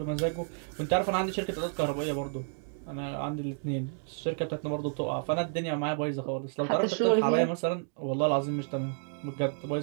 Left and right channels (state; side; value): silent; left; 57 dB below the other